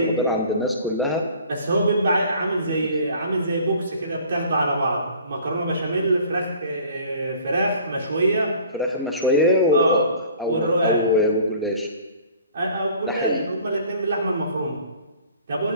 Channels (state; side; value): inverted; both; correlation -0.49